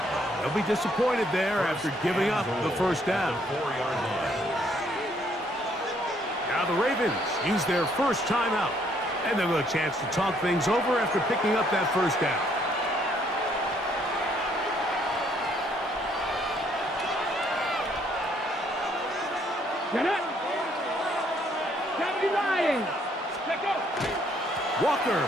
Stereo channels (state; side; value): normal; both; correlation 0.67